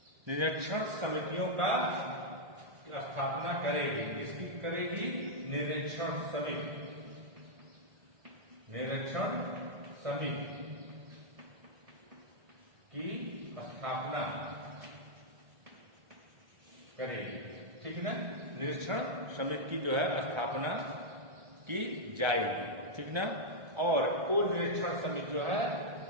निरीक्षण समितियों का स्थापना करेगी। किसकी करेगी? निरीक्षण समिति की स्थापना करेगी। ठीक ना। निरीक्षण समिति की जो है स्थापना की जाएगी। ठीक ना। और वो निरीक्षण समिति जो है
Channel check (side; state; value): left; late; 1.4 ms